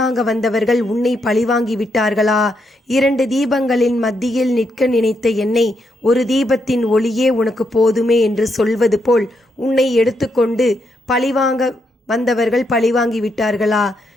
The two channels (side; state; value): both; normal; correlation 0.79